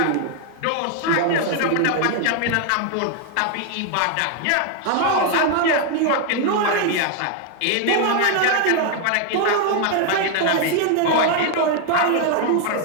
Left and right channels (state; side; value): different; both; correlation 0.00